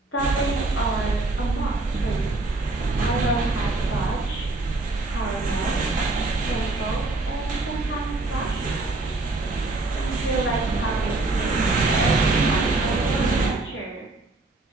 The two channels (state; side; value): quieter; left; 3.1 dB